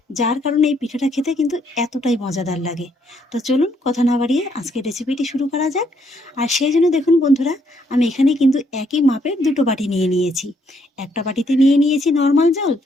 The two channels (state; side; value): normal; both; correlation 0.71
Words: যার কারণে এই পিঠাটা খেতে কিন্তু এতটাই মজাদার লাগে। তো চলুন কথা না বাড়িয়ে আজকের রেসিপিটি শুরু করা যাক। আর সেই জন্য দেখুন বন্ধুরা, আমি এখানে কিন্তু একই মাপের দুটো বাটি নিয়ে নিয়েছি। একটা বাটিতে নিয়ে নিয়েছি নর্মাল জল,